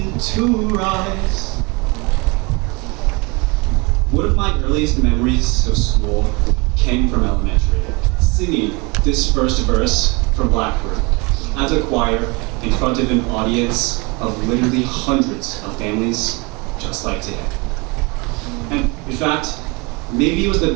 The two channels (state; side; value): quieter; left; 27.9 dB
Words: to rise. One of my earliest memories of school came from elementary, singing this first verse from Blackbird as a choir in front of an audience of literally hundreds of families just like today. And in fact, maybe it was the